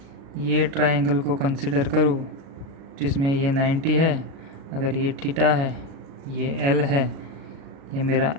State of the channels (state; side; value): late; left; 36 ms